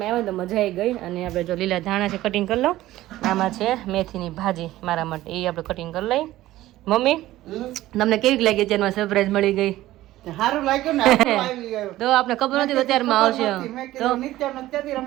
તો મજા આવી ગઈ અને આપણે જો લીલા ધાણા છે કટિંગ કરી લો. આમાં છે મેથીની ભાજી મારા માટે એ આપણે કટિંગ કરી લઈ. મમ્મી તમને કેવી લાગી અત્યારમાં સરપ્રાઈઝ મળી ગઈ? સારું લાગ્યું ને તો આપણે ખબર નથી અત્યારમાં આવશે તો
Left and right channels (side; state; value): left; quieter; 15.7 dB